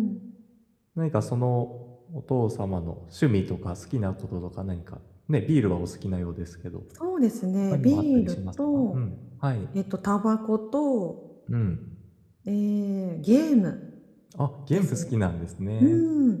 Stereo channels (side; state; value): both; identical; correlation 1.00